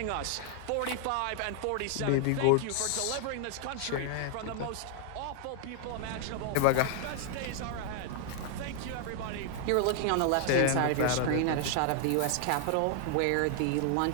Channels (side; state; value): both; different; correlation 0.00